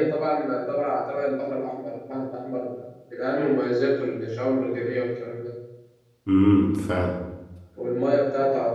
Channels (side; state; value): both; identical; correlation 1.00